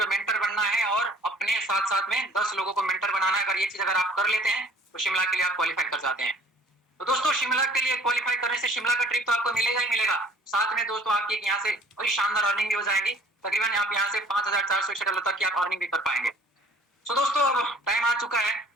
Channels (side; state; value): both; normal; correlation 0.52